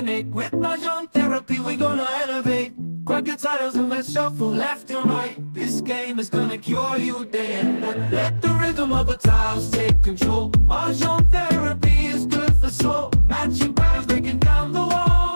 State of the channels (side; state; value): both; inverted; correlation -1.00